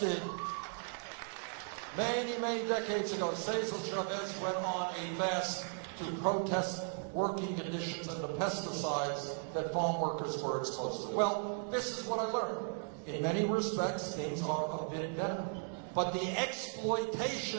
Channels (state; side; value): silent; left; 53 dB below the other